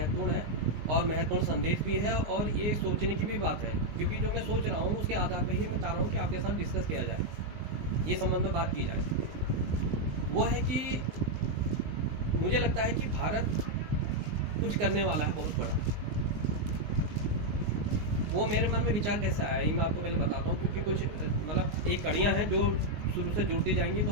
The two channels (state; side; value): late; left; 19 ms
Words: है और महत्वपूर्ण संदेश भी है और ये सोचने की भी बात है, क्योंकि जो मैं सोच रहा हूँ उसके आधार पर ही मैं चाह रहा हूँ कि आपके साथ डिस्कस किया जाए, ये संबंध में बात की जाए। वो है कि मुझे लगता है कि भारत कुछ करने वाला है बहुत बड़ा। वो मेरे मन में विचार कैसे आया ये मैं आपको पहले बताता हूँ, क्योंकि कुछ एक कड़ियाँ हैं जो शुरू से जुड़ती जाएंगी तो